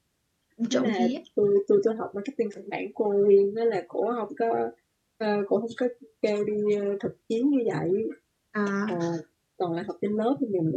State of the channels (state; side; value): identical; both; correlation 1.00